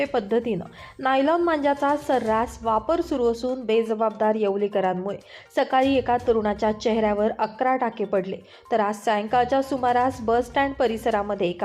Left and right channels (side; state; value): both; identical; correlation 1.00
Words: पद्धतीनं नायलॉन मांजाचा सर्रास वापर सुरू असून बेजबाबदार येवलेकरांमुळे सकाळी एका तरुणाच्या चेहऱ्यावर 11 टाके पडले, तर आज सायंकाळच्या सुमारास बस स्टँड परिसरामध्ये